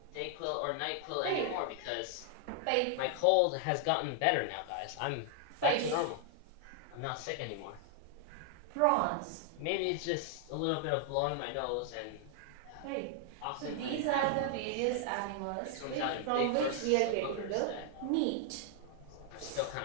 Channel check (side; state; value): both; different; correlation 0.00